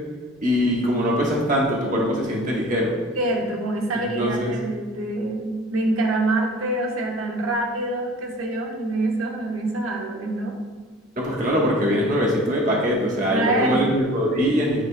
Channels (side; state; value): both; normal; correlation 0.45